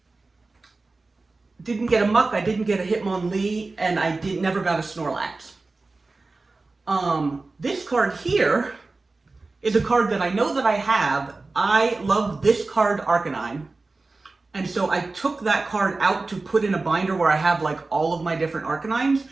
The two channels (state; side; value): quieter; left; 3.5 dB